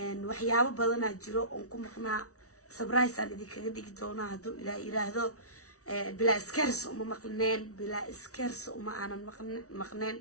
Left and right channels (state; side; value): late; right; 0.65 ms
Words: waxyaabo badan jiro oo ku maqnaa surprise aan idinkaga dhigi doonaa haduu ilaa yiraahdo bila iskers uma maqneen bila iskers uma aanan maqneen